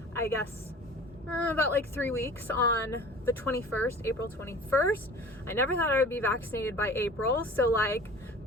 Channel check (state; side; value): normal; both; correlation 0.42